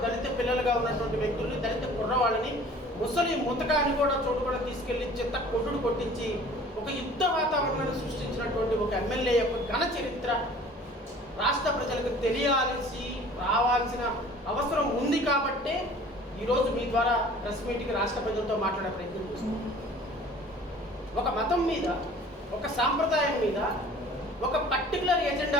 దళిత పిల్లలుగా ఉన్నటువంటి వ్యక్తుల్ని, దళిత కుర్రవాళ్ళని, ముసలి ముతకాన్ని కూడా చోటు కూడా తీసుకెళ్లి చిత్త కొట్టుడు కొట్టించి ఒక యుద్ధ వాతావరణాన్ని సృష్టించినటువంటి ఒక ఎమ్మెల్యే యొక్క ఘన చరిత్ర రాష్ట్ర ప్రజలకు తెలియాల్సి రావాల్సిన అవసరం ఉంది. కాబట్టే ఈరోజు మీ ద్వారా ప్రెస్ మీట్కి రాష్ట్ర ప్రజలతో మాట్లాడే ప్రయత్నం చేస్తున్నాం. ఒక మతం మీద, ఒక సాంప్రదాయం మీద ఒక పర్టికులర్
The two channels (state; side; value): normal; both; correlation 0.48